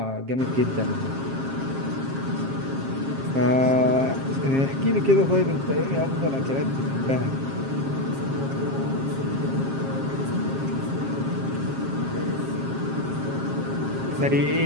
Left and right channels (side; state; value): left; late; 7.4 ms